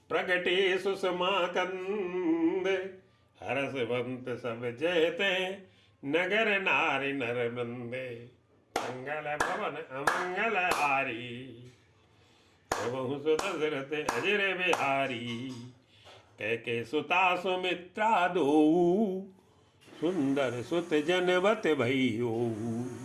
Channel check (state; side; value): identical; both; correlation 1.00